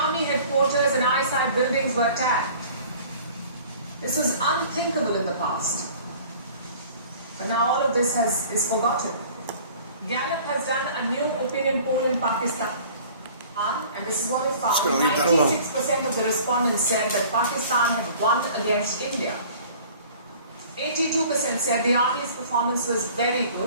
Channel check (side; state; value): both; inverted; correlation -0.48